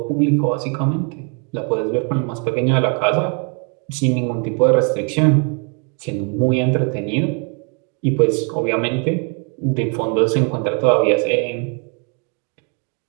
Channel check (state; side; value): quieter; left; 37.6 dB